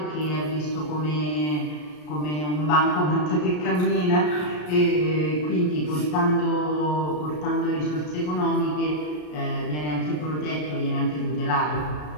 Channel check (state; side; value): late; right; 33 ms